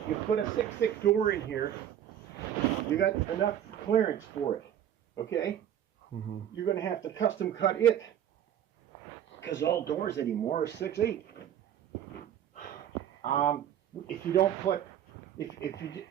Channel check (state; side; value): quieter; left; 10.3 dB